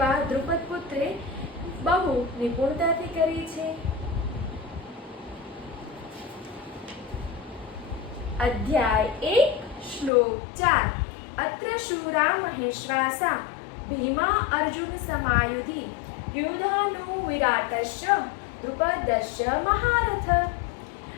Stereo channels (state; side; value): drops out; right; at 10.1 s